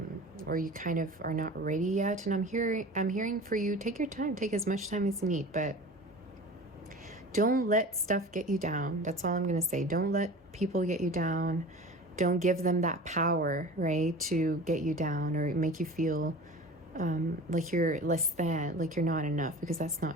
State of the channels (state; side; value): normal; both; correlation 0.37